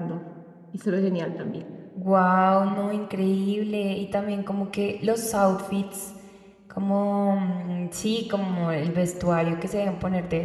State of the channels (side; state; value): both; identical; correlation 1.00